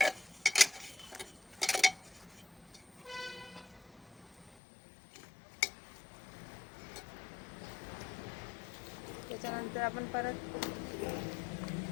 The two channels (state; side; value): drops out; right; at 4.5 s